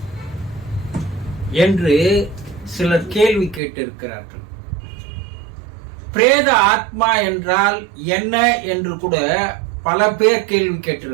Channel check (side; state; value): left; drops out; at 3.6 s